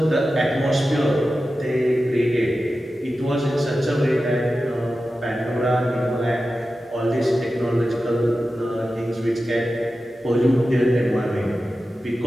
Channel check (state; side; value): normal; both; correlation 0.93